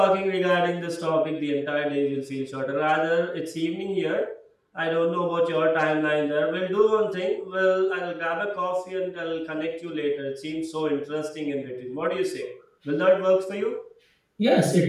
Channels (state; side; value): identical; both; correlation 1.00